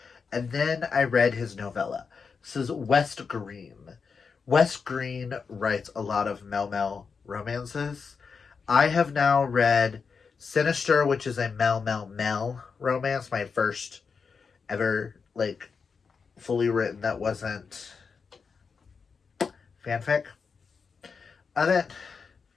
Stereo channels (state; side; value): quieter; right; 5.4 dB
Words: and then I read his novella. This is West Green. West Green writes a lot of Mel romances. I have now read Sinister, which is a Mel romance, my first ever, like, fully written that wasn't fanfic of it.